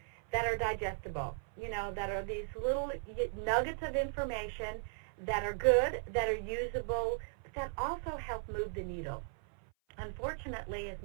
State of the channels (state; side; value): silent; left; 53 dB below the other